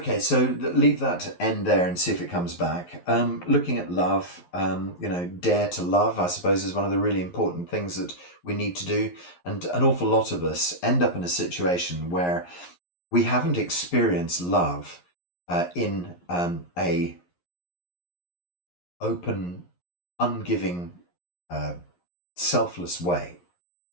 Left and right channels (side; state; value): right; late; 11 ms